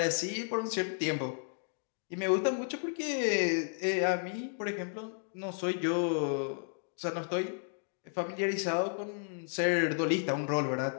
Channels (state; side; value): silent; right; digital silence